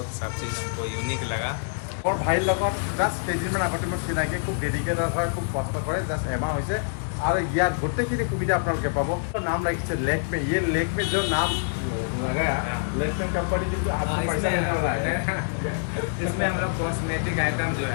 सब चीज़ हमको यूनिक लगा। মোৰ ভাইৰ লগত জাষ্ট কেইদিনমান আগতে মোৰ চিনাকি, খুব ডেডিকেটেড হয়, খুব কষ্ট কৰে। জাষ্ট এমাহ হৈছে আৰু ইয়াত গোটেইখিনি সুবিধা আপোনালোকে পাব। নাম ৰাখিছে लेक्मे। ये लेक्मे जो नाम लगाया, लेक्मे कंपनी की आपको पैसा देने वाला है। इसमें हम लोग कॉस्मेटिक आइटम जो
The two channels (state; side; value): silent; right; digital silence